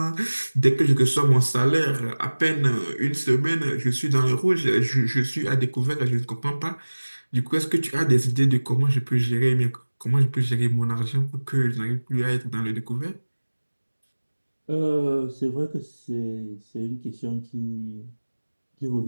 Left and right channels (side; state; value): both; inverted; correlation -1.00